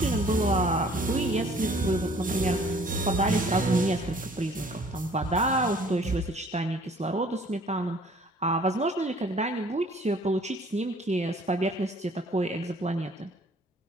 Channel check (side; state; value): both; normal; correlation 0.55